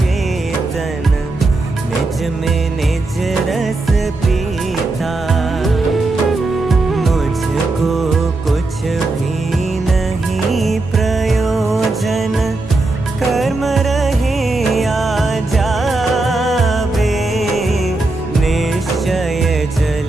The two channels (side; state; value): left; quieter; 3.1 dB